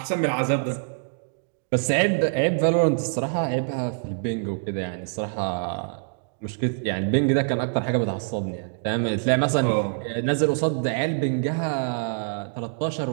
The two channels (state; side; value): silent; left; digital silence